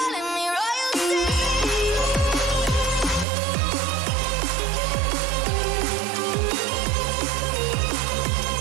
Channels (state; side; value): drops out; left; at 3.2 s